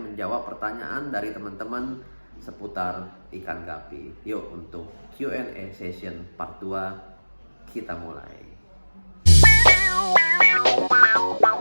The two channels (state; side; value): inverted; both; correlation -1.00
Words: pertanyaan dari teman-teman seputar ikan gapi. Yuk, untuk Q&A session part 2 kita mulai.